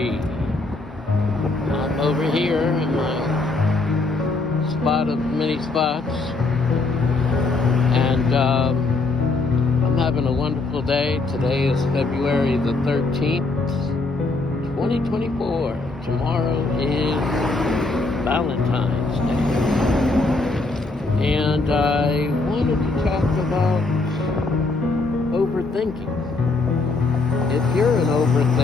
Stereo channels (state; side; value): quieter; right; 3.4 dB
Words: I'm over here in my spot of many spots, and I'm having a wonderful day. Today is February the 13th, 2024. Tomorrow is Valentine's Day. And I wanted to talk about overthinking. If you're an